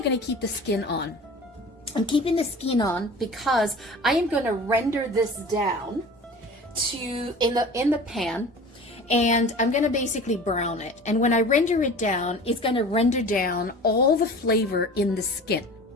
going to keep the skin on? I'm keeping the skin on because I am going to render this down in the pan, and I'm going to basically brown it. And when I render it down, it's going to render down all the flavor in the skin,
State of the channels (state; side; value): normal; both; correlation 0.40